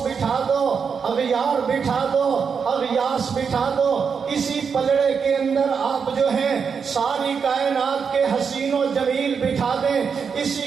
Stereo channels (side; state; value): left; quieter; 6.2 dB